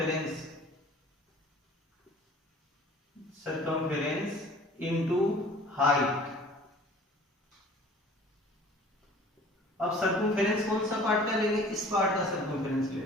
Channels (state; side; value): normal; both; correlation 0.48